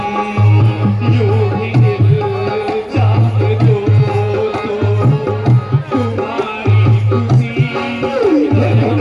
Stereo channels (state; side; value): identical; both; correlation 1.00